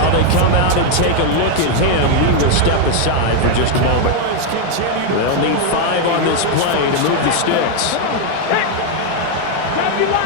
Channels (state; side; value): different; both; correlation 0.01